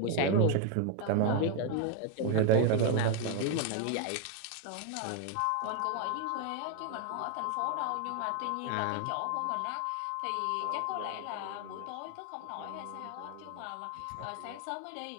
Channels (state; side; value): different; both; correlation 0.01